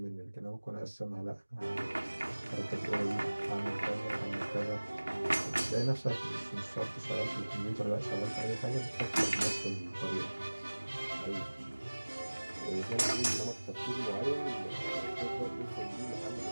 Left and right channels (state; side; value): inverted; both; correlation -1.00